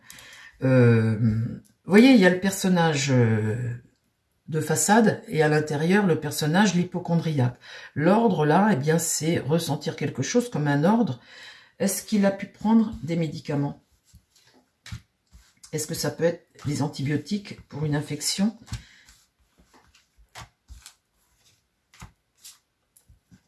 Vous voyez, il y a le personnage de façade et à l'intérieur, le personnage, l'hypocondriaque. L'ordre, là, eh bien, c'est ressentir quelque chose comme un ordre. Est-ce qu'il a pu prendre des médicaments? Est-ce que ça peut être des antibiotiques pour une infection?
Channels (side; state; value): both; identical; correlation 1.00